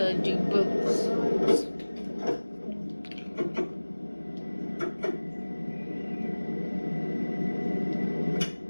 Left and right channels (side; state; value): both; inverted; correlation -1.00